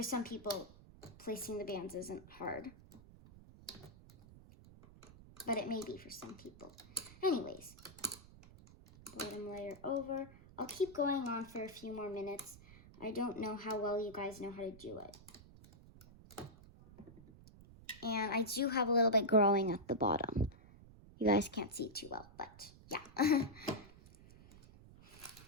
some people, placing the bands isn't hard. But it may be for some people. Anyways. Bottom layer over. I'll keep going on for a few more minutes. I don't know how well you guys know how to do it. And I do have a little bit growing at the bottom. You guys can't see too well, but yeah.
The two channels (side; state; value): right; noise; rumble, 20 dB below the sound